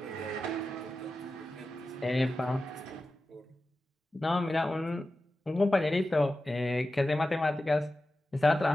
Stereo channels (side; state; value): both; normal; correlation 0.93